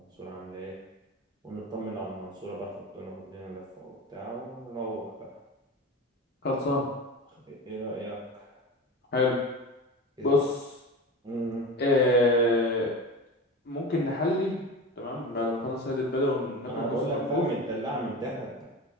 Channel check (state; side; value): normal; both; correlation 0.29